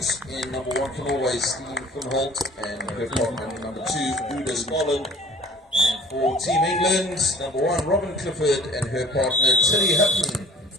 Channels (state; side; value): normal; both; correlation 0.49